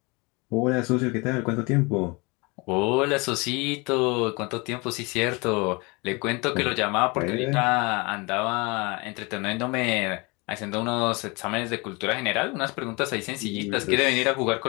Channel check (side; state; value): right; quieter; 27.6 dB